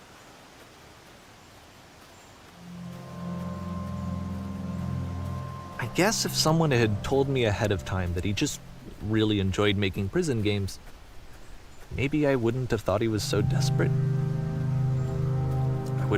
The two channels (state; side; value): identical; both; correlation 1.00